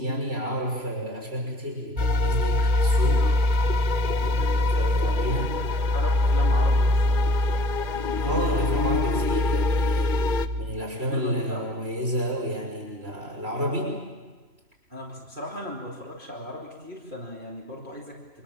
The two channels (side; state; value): left; late; 3.0 ms